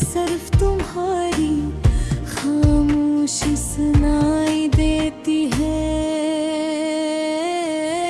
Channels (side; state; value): both; identical; correlation 1.00